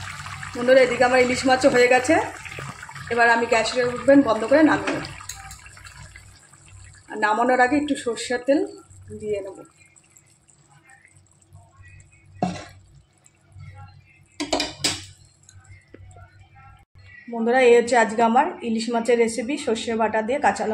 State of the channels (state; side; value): identical; both; correlation 1.00